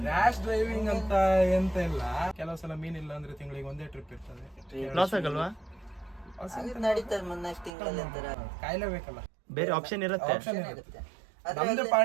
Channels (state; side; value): drops out; left; at 7.7 s